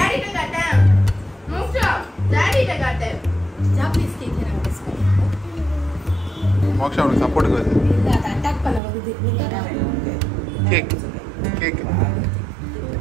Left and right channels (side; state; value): left; drops out; at 8.8 s